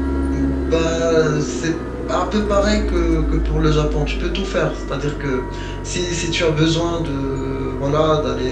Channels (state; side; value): identical; both; correlation 1.00